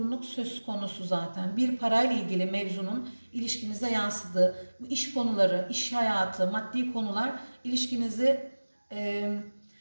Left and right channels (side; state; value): both; inverted; correlation -1.00